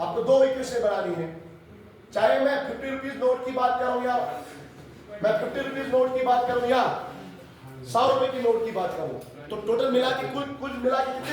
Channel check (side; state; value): both; identical; correlation 1.00